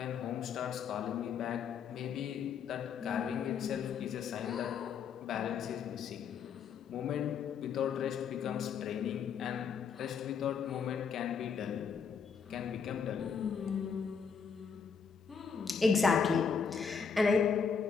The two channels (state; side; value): quieter; right; 6.3 dB